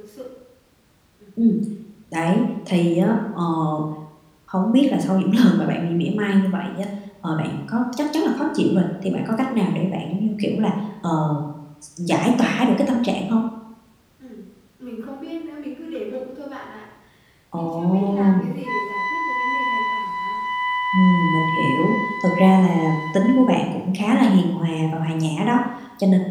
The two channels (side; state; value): both; identical; correlation 1.00